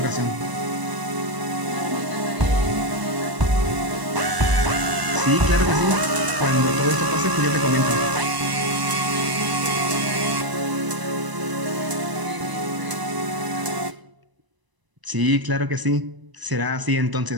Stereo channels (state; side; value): late; left; 1.0 ms